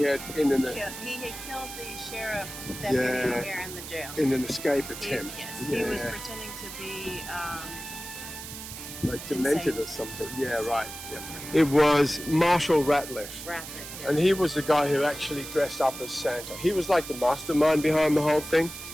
had He had killed the sheriff deputy here in the jail. in an escape attempt. He was pretending to be like demented or something. Yeah, right. Yeah. It was Marshall Ratliff. And he was the guy who actually dressed up as Santa. He was like the mastermind behind the whole thing.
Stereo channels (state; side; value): noise; right; hiss, 11 dB below the sound